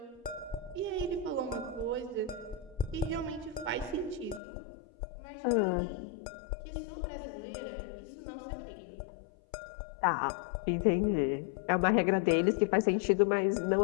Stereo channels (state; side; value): drops out; right; at 4.4 s